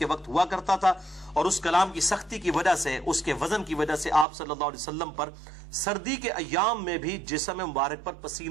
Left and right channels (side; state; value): left; drops out; at 4.2 s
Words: وقت ہوا کرتا تھا، اور اس کلام کی سختی کی وجہ سے، اس کے وزن کی وجہ سے آپ صلی اللہ علیہ وسلم پر سردی کے ایام میں بھی جسم مبارک پر